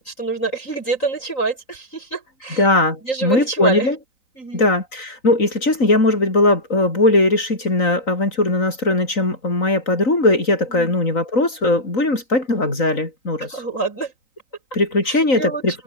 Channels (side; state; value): right; late; 3.9 ms